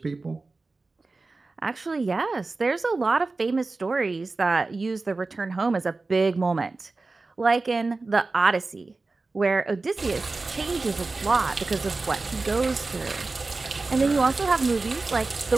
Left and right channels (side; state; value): left; quieter; 3.6 dB